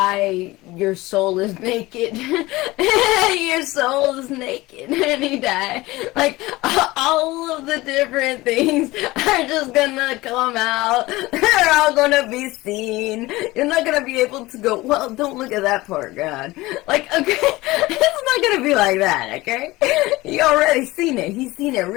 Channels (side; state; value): right; quieter; 19.8 dB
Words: your soul is naked. Your soul is naked when you die. Like, all of the different things are just gonna come out. They're all gonna be seen. You're not gonna be able to go, well, don't look at that part, God. Like, okay, it's not gonna be like that, okay? You already seen it. He's seen it